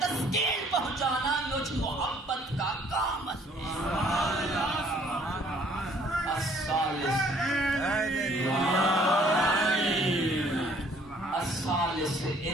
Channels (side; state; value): both; normal; correlation 0.60